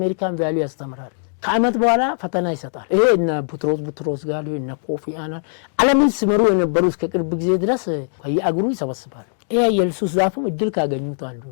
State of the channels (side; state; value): right; silent; digital silence